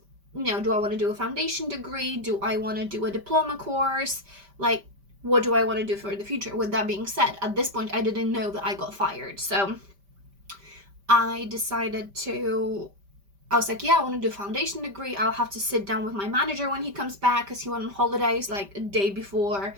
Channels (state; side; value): late; left; 5.1 ms